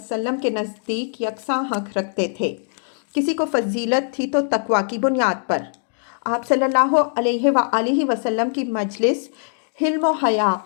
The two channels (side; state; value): right; silent; digital silence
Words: کے نزدیک یکساں حق رکھتے تھے۔ کسی کو فضیلت تھی تو تقویٰ کی بنیاد پر۔ آپ صلی اللہ علیہ وآلہ وسلم کی مجلس حلم و حیا